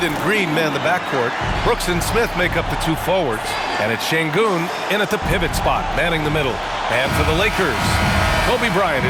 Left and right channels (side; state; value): both; identical; correlation 1.00